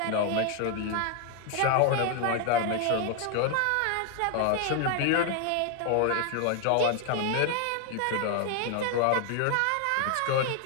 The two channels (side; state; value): both; different; correlation 0.00